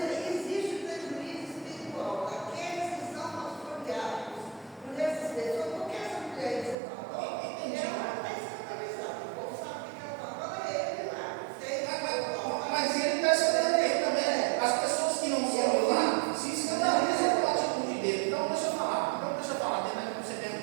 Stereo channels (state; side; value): drops out; left; at 6.8 s